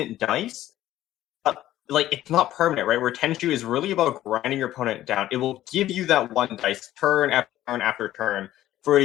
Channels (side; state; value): right; quieter; 13.8 dB